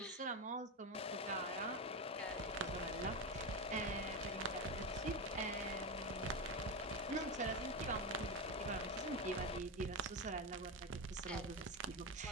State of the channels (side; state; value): both; normal; correlation 0.14